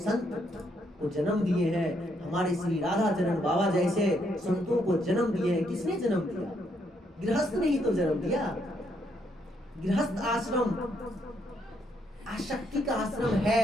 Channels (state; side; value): normal; both; correlation 0.74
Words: को जन्म दिए हैं, हमारे श्री राधा चरण बाबा जैसे संतों को जन्म दिए हैं। किसने जन्म दिया? गृहस्थ ने ही तो जन्म दिया। गृहस्थ आश्रम आसक्ति का आश्रम